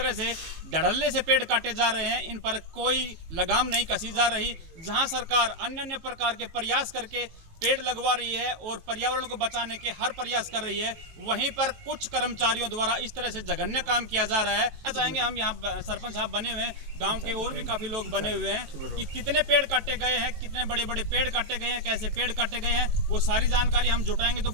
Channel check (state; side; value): late; left; 18 ms